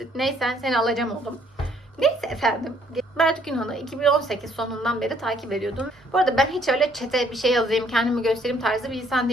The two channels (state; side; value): normal; both; correlation 0.64